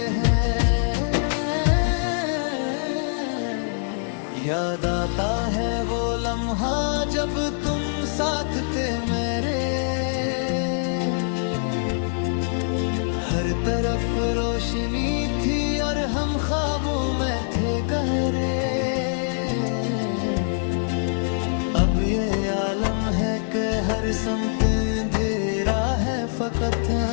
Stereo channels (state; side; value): silent; right; digital silence